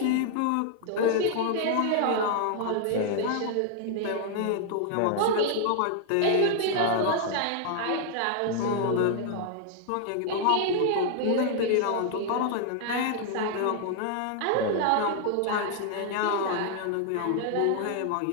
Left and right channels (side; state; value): both; different; correlation 0.00